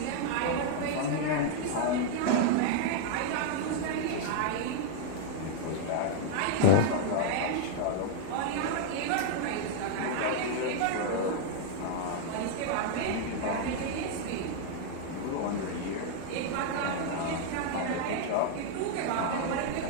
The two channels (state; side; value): different; both; correlation 0.00